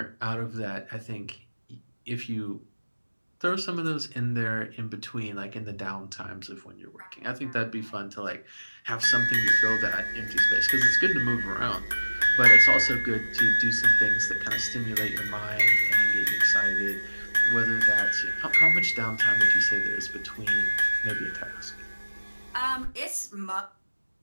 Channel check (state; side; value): inverted; both; correlation -1.00